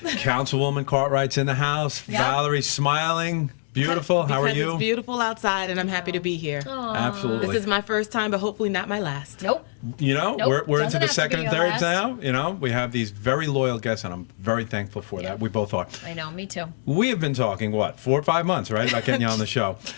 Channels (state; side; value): silent; right; digital silence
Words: Councilwoman Cartright's in the house. Yep. Valerie's smiling. Beautiful. How are you? It's beautiful outside, and I'm happy to be here. Aww. Absolutely. This is my first time, but hopefully not my last. Nope. You know, Nope. we're into the Doesn't have to second be and your thirds last. now. You know, we have these very loyal guests, and I'm very thankful for that. We both are. I know, me too. We have been talking, 4 or 5 months, right, about getting you on the show.